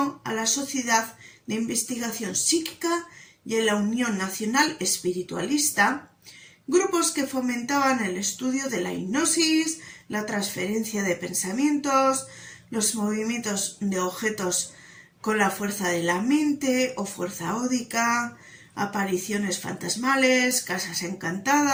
a la Sociedad de Investigación Psíquica y a la Unión Nacional Espiritualista, grupos que fomentaban el estudio de la hipnosis, la transferencia de pensamientos, los movimientos de objetos con la fuerza de la mente o fuerza ódica, apariciones fantasmales, casas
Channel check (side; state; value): both; identical; correlation 1.00